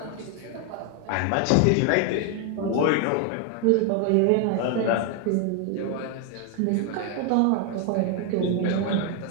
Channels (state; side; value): different; both; correlation 0.01